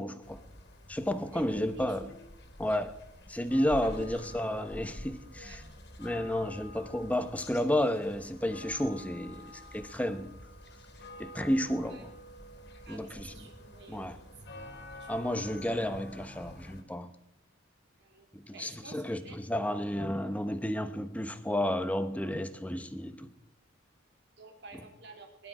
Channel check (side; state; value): both; normal; correlation 0.85